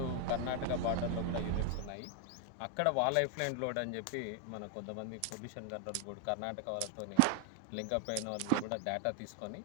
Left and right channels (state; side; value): different; both; correlation 0.00